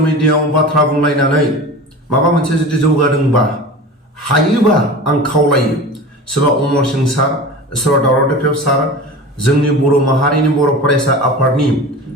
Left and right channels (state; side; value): normal; both; correlation 0.34